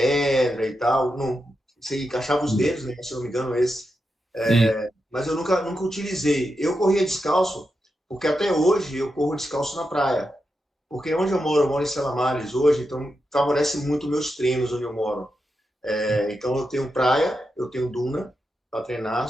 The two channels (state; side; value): normal; both; correlation 0.87